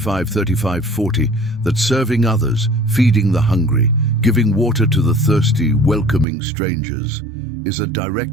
that serving others, feeding the hungry, giving water to the thirsty, welcoming strangers, is a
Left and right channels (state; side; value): drops out; left; at 6.2 s